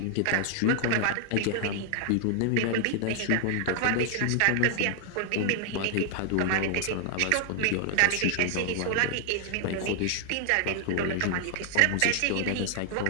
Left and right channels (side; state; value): both; different; correlation 0.00